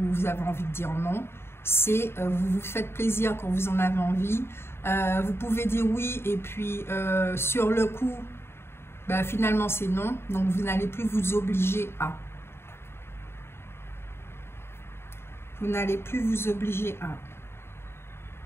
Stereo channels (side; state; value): right; late; 0.12 ms